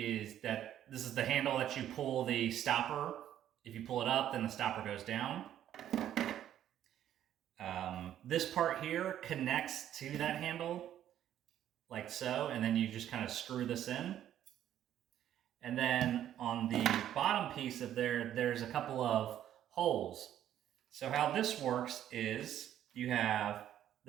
is the handle that you pull the stopper. If you pull it up, then the stopper goes down. This part here connects to that handle like so, and then you just kind of screw this in. And then on the bottom piece of there's a couple of holes. So how this works is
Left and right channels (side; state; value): left; quieter; 11.2 dB